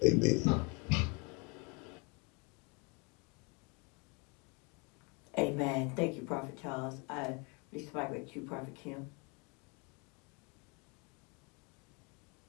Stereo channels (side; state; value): right; quieter; 31.5 dB